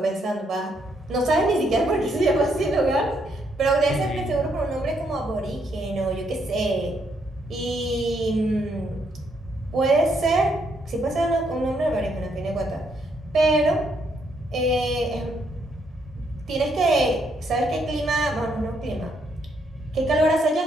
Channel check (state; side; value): normal; both; correlation 0.74